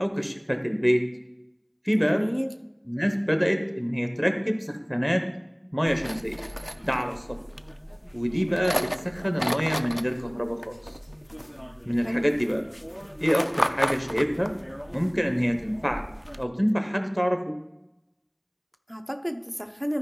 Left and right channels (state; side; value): identical; both; correlation 1.00